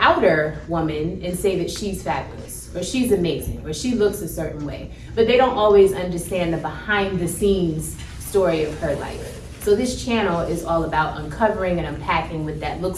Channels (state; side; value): identical; both; correlation 1.00